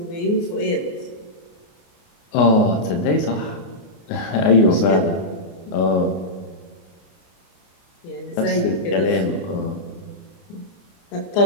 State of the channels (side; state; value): right; late; 29 ms